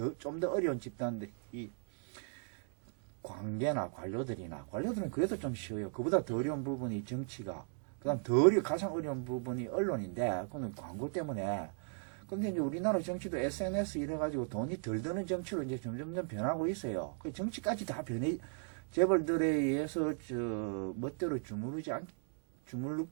좀 더 어려운 집단들이 관계나 관료들은 그래도 좀 쉬워요. 그보다 더 어려운 부분이 정치가, 그다음 가장 어려운 부분이 언론인데, 그건 광고 때문에. 근데 이제 우리나라 정치도 SNS 이래가지고 돈이 덜 드는 정치로 이제 점점점 변하고 있어요. 그 정치까지 다 재벌들에 의해서 멋대로 주물럭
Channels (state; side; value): silent; left; 53 dB below the other